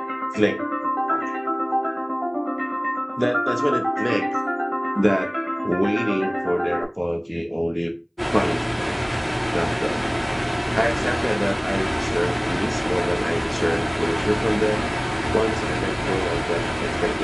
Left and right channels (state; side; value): identical; both; correlation 1.00